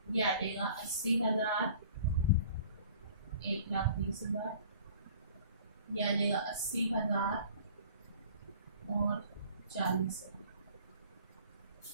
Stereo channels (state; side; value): inverted; both; correlation -0.49